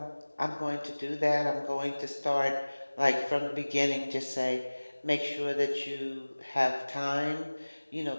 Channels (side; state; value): both; inverted; correlation -1.00